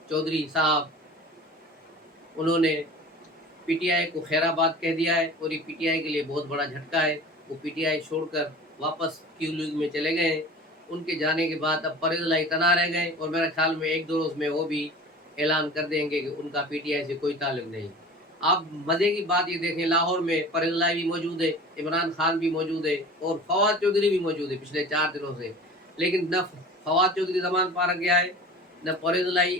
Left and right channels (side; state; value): both; normal; correlation 0.39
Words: چودھری صاحب، انہوں نے پی ٹی آئی کو خیر آباد کہہ دیا ہے، اور یہ پی ٹی آئی کے لیے بہت بڑا جھٹکا ہے۔ وہ پی ٹی آئی چھوڑ کر واپس کیو لیگ میں چلے گئے ہیں۔ ان کے جانے کے بعد اب پرویز الہی تنہا رہ گئے، اور میرے خیال میں ایک دو روز میں وہ بھی اعلان کر دیں گے کہ ان کا پی ٹی آئی سے کوئی تعلق نہیں۔ آپ مزے کی بات یہ دیکھیں، لاہور میں پرویز الہی بھی موجود ہے، عمران خان بھی موجود ہے، اور فواد چودھری بھی موجود ہے پچھلے 4 دنوں سے، لیکن نہ فواد چودھری زمان پارک گیا ہے، نہ پرویز